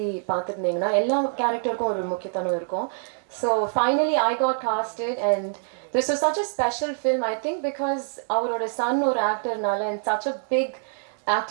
பார்த்துருந்தீங்கன்னா எல்லா கேரக்டருக்கும் ஒரு முக்கியத்துவம் இருக்கும். So finally I got casted and this was such a special film I think because அவரோட son ஒரு ஆக்டர்னால and such a big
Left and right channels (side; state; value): left; silent; digital silence